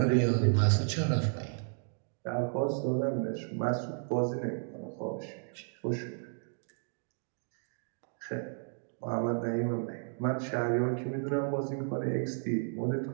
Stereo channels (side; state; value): left; silent; 56 dB below the other